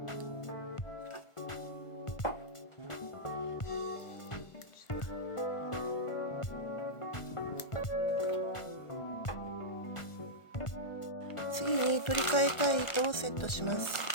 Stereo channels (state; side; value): late; right; 1.5 ms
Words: 次に取り替えたい糸をセットします。